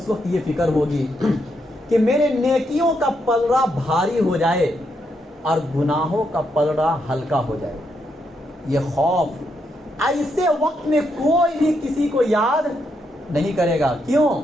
وقت یہ فکر ہوگی کہ میرے نیکیوں کا پلڑا بھاری ہو جائے اور گناہوں کا پلڑا ہلکا ہو جائے. یہ خوف ایسے وقت میں کوئی بھی کسی کو یاد نہیں کرے گا. کیوں؟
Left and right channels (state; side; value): normal; both; correlation 0.79